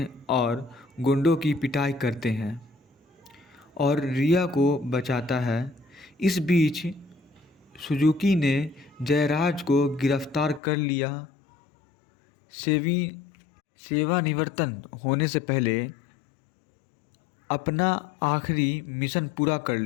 और गुंडों की पिटाई करते हैं और रिया को बचाता है। इस बीच सुजुकी ने जयराज को गिरफ्तार कर लिया। सेवानिवृत्त होने से पहले अपना आखिरी मिशन पूरा कर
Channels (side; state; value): right; drops out; at 10.6 s